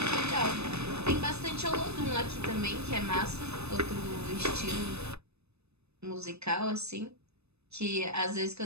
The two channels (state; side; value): late; left; 0.80 ms